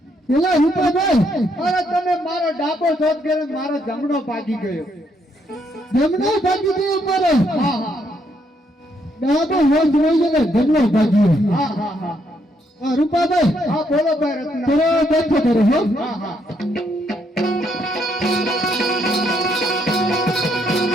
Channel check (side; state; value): both; normal; correlation 0.74